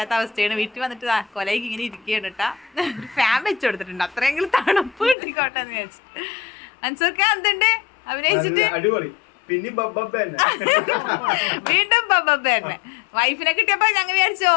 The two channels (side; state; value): right; drops out; at 5.2 s